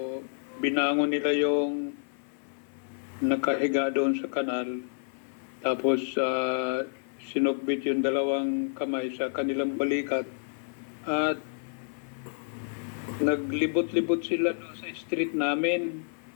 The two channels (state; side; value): silent; right; 56 dB below the other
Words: binangon nila yung nakahiga doon sa kanal. Tapos, sinugbit yung dalawang kamay sa kanilang balikat. At naglibot-libot sila doon sa street namin.